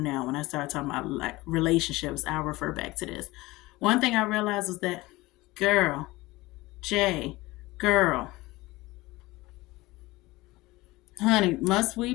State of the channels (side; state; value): right; quieter; 20.2 dB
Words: now. When I start talking about like relationships, I'll refer back to this. One thing I realized was that, girl, Jay, girl, honey, must we